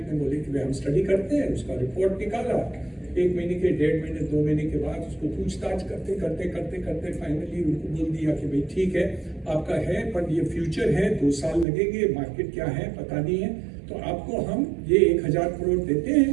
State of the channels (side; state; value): left; drops out; at 11.7 s